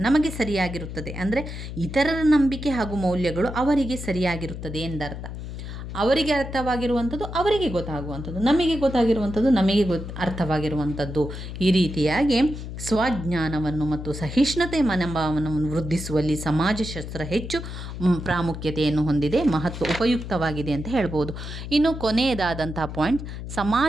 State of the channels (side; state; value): left; noise; hum, 8 dB below the sound